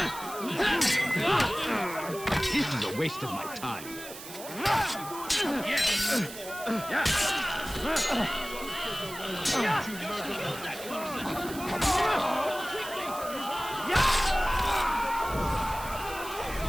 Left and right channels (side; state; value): right; noise; hiss, 13 dB below the sound